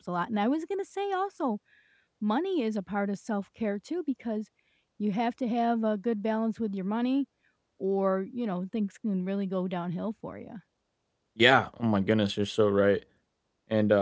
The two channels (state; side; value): identical; both; correlation 1.00